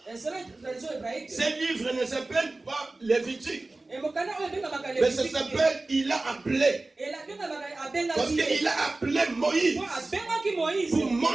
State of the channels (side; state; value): left; quieter; 3.1 dB